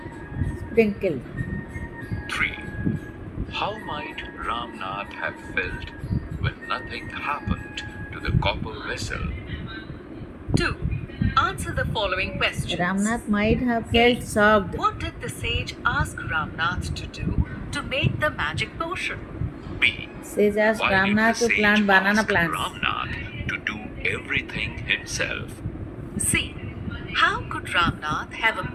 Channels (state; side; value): identical; both; correlation 1.00